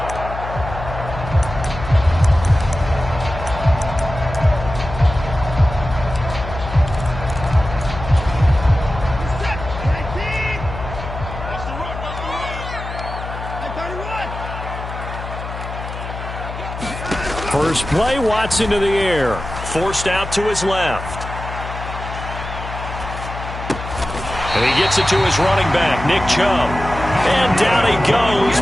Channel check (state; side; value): noise; left; hum, 9 dB below the sound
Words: First play, Watson to the air. Forced out to his left. And he gets it to his running back, Nick Chubb. And down he goes,